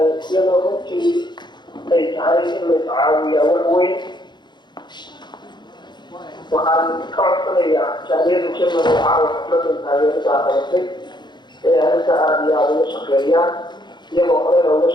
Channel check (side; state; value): right; late; 0.21 ms